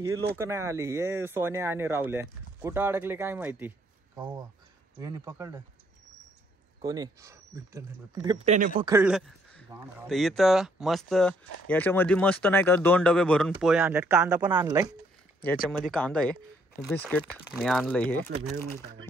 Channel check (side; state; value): both; normal; correlation 0.68